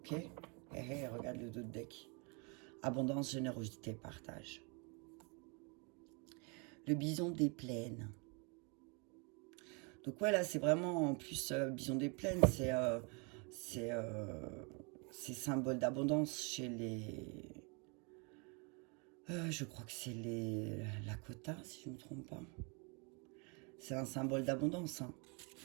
Regarde le dos de deck. Abondance, générosité, partage. Le bison des plaines. Donc ouais, là, c'est vraiment, en plus, bison des plaines, c'est symbole d'abondance chez les... je crois que c'est les Lakota, si je ne me trompe pas. C'est un symbole d'abondance, hein,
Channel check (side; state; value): left; quieter; 33.4 dB